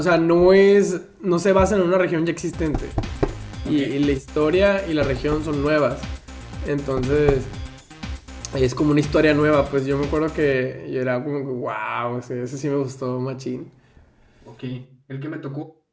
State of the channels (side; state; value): both; identical; correlation 1.00